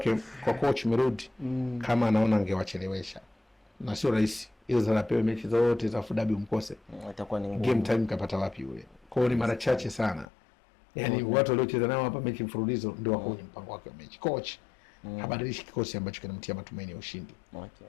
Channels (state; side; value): drops out; right; at 10.2 s